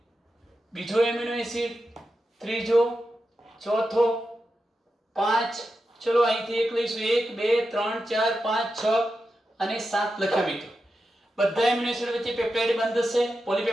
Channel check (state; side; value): normal; both; correlation 0.89